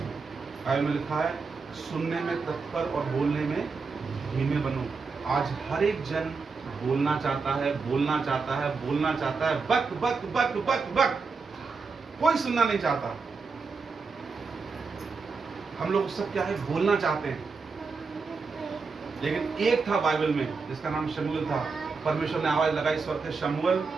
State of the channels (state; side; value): quieter; left; 4.7 dB